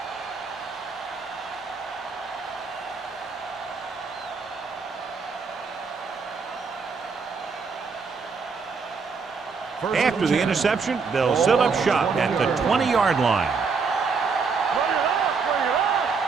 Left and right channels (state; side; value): quieter; left; 5.1 dB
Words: After the interception, they'll set up shop at the 20-yard line.